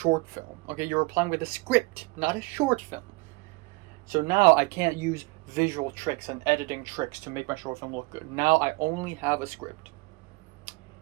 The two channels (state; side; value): quieter; left; 26.1 dB